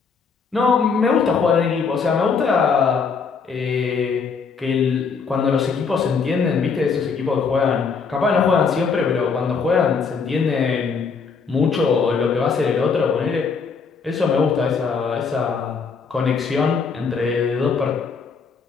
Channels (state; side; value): quieter; right; 5.4 dB